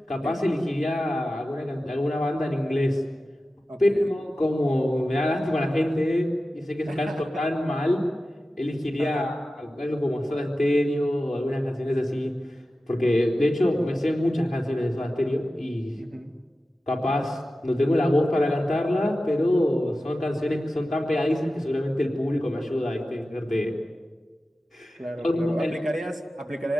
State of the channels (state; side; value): normal; both; correlation 0.94